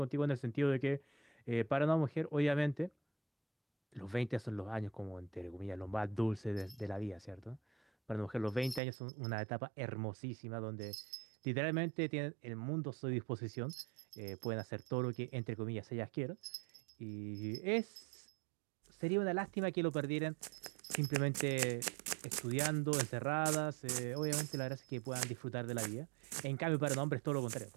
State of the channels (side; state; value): left; drops out; at 8.8 s